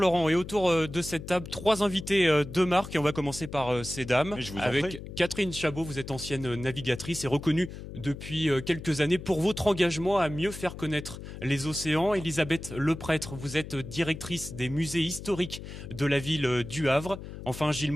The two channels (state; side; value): noise; left; hum, 11 dB below the sound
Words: et autour de cette table, 3 invités de marque et on va commencer par ces dames. Avec Catherine Chabot, vous êtes ancienne navigatrice et reconnue depuis quelques années pour votre engagement à mieux faire connaître les océans. Elisabeth Leprêtre, vous êtes directrice des musées historiques de la ville du Havre. Enfin, Gilles